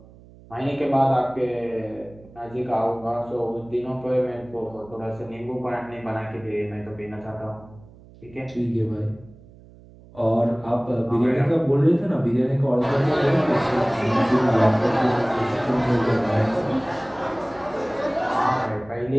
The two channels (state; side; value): noise; right; hum, 23 dB below the sound